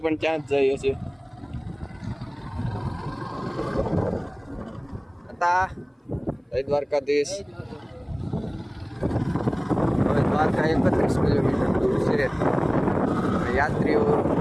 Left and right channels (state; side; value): identical; both; correlation 1.00